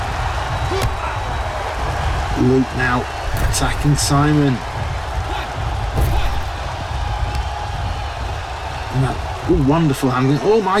Luke now attacking Simon. Wonderful handling. Oh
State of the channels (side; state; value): both; identical; correlation 1.00